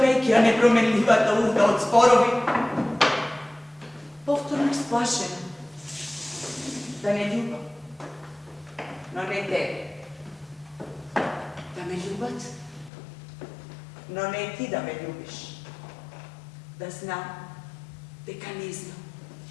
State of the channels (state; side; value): drops out; right; at 12.9 s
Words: a nepromenljiva da urda od zborovi. Povtorno splašen, da ne ljubav, no ne te. Da me ljubat, no ne ti da me ljubiš. Da znam, deka ne znam.